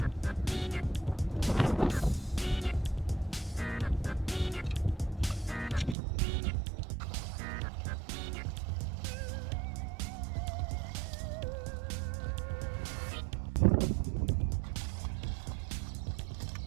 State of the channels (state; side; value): drops out; left; at 6.0 s